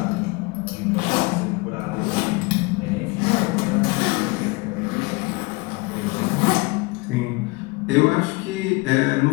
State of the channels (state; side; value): quieter; right; 25.4 dB